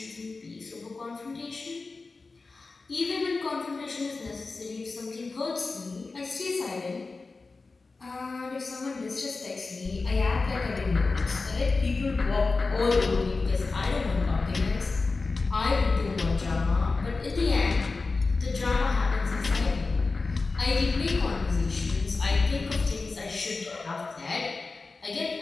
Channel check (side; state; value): right; quieter; 3.9 dB